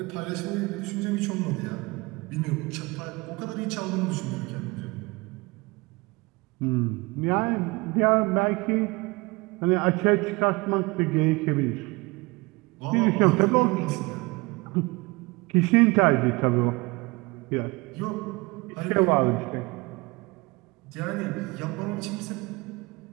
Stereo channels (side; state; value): left; quieter; 24.7 dB